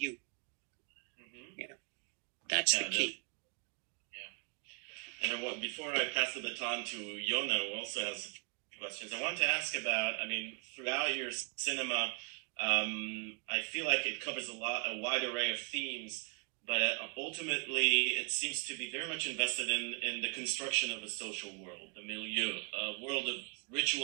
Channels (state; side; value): quieter; left; 36.4 dB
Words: Mm-hmm. That's the key. And before I pass the baton to Yona, who also has questions, I want to ask about, throughout your cinema, I feel like it covers a wide array of themes, but ultimately it seems to be very much invested in the construction of a social world, the milieu, a world of